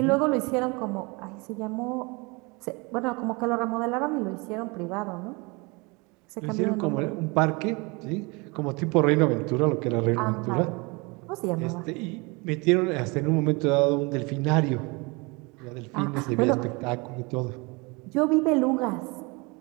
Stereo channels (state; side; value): quieter; left; 27.5 dB